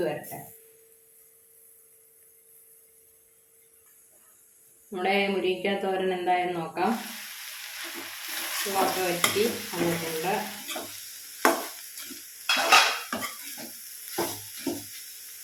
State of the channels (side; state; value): both; identical; correlation 1.00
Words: വരട്ടെ. നമ്മുടെ മുരിങ്ങയ്ക്ക തോരൻ എന്തായെന്ന് നോക്കാം. ചുവക്കെ വറ്റി വന്നിട്ടുണ്ട്.